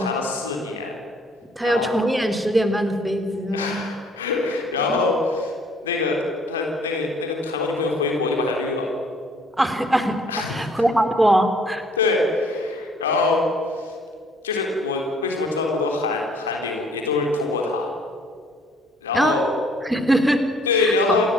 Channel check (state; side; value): normal; both; correlation 0.60